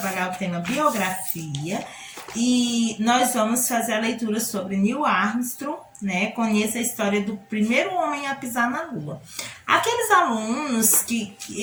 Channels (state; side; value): identical; both; correlation 1.00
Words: o tema biografia. E nós vamos fazer a leitura sobre Neil Armstrong, né? Conheça a história do primeiro homem a pisar na Lua. Aqueles alunos que